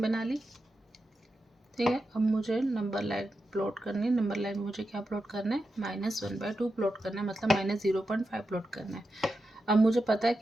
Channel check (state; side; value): normal; both; correlation 0.89